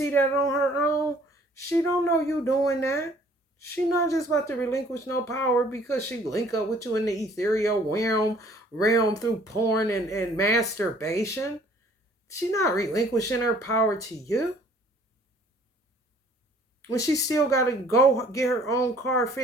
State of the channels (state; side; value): normal; both; correlation 0.57